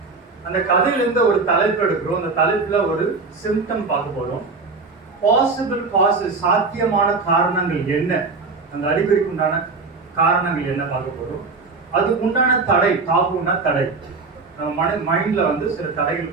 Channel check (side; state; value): left; quieter; 4.1 dB